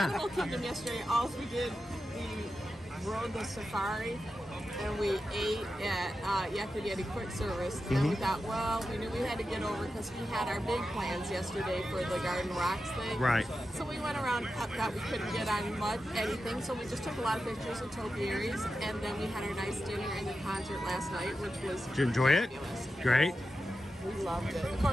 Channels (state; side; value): normal; both; correlation 0.90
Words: Animal Kingdom yesterday. All we did, we rode the safari and we ate at Yakima Quick Service. And then we thought, well, we knew we had to get over because we had our big plans yesterday for the Garden Rocks thing. Right. So we went around, thought we couldn't get on anything, so we just took a lot of pictures of topiaries, and then we had our nice dinner and the concert last night, which was Did you enjoy it? fabulous. Great. We loved it. Of